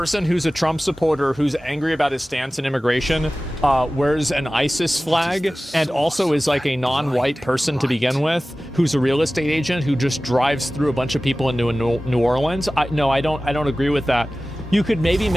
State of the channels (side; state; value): both; normal; correlation 0.97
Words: who's a Trump supporter who's angry about his stance in immigration wears an ISIS flag and also is like a non-white person to begin with, who's a real estate agent who just drives through a bunch of people into New Orleans? No, I don't agree with that. You could maybe